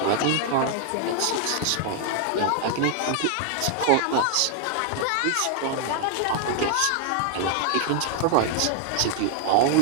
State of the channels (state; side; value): different; both; correlation 0.00